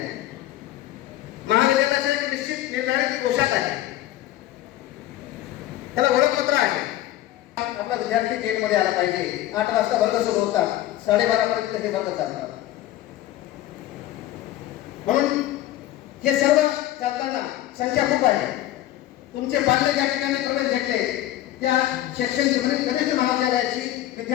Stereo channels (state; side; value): quieter; right; 14.2 dB